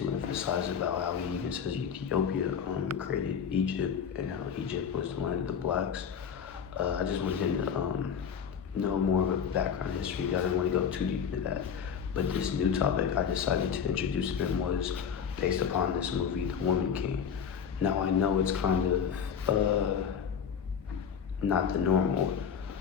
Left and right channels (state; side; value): quieter; right; 7.3 dB